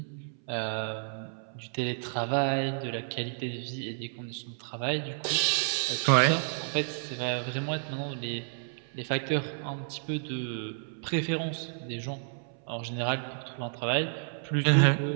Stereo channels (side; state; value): left; silent; 57 dB below the other